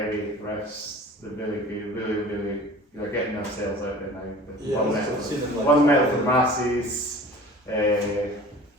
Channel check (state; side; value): normal; both; correlation 0.43